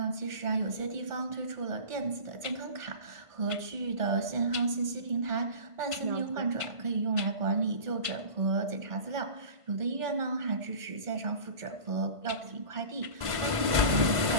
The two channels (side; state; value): left; late; 1.5 ms